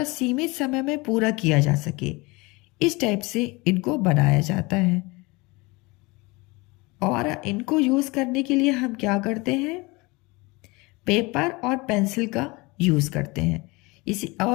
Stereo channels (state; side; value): quieter; right; 24.6 dB